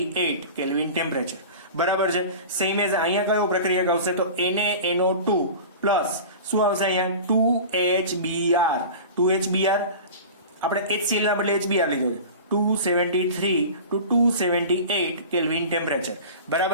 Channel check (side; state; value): both; inverted; correlation -0.35